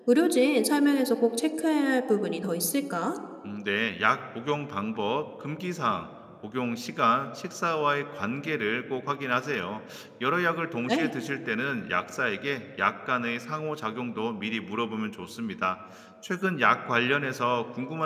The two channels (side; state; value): both; identical; correlation 1.00